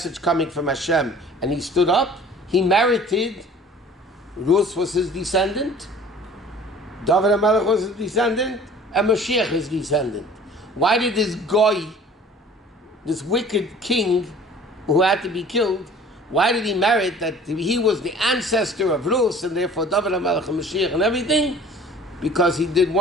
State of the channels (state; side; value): normal; both; correlation 0.48